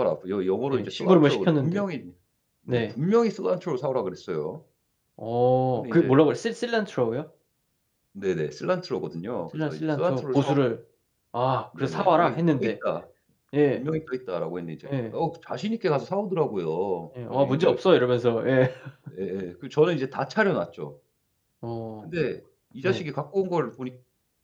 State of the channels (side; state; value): both; identical; correlation 1.00